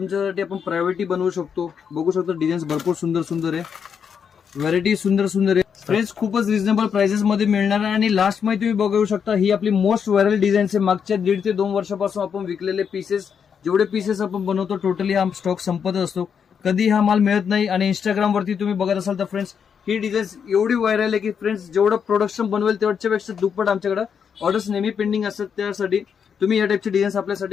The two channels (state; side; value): quieter; right; 7.1 dB